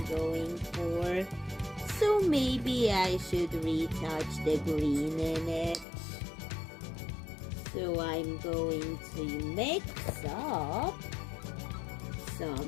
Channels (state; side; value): drops out; right; at 5.9 s